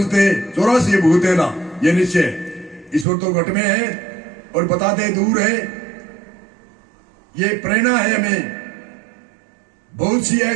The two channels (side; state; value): left; drops out; at 3.1 s